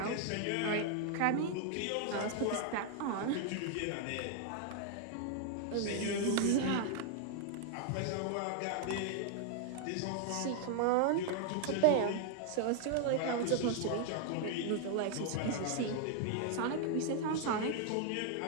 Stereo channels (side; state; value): both; different; correlation 0.00